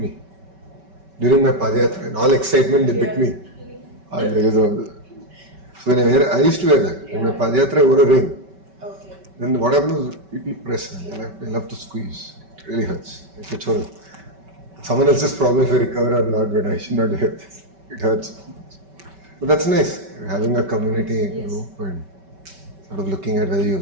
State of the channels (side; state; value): left; late; 5.2 ms